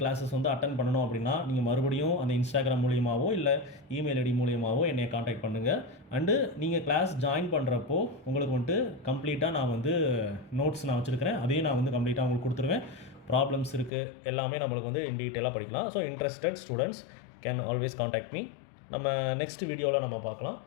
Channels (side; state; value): right; drops out; at 13.9 s